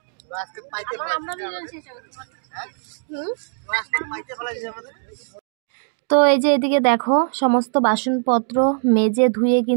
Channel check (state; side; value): silent; left; 61 dB below the other